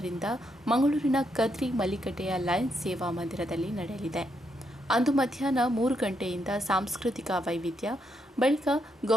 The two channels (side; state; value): both; normal; correlation 0.79